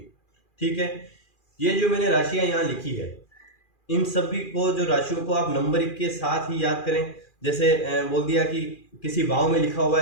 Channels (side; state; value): right; late; 2.4 ms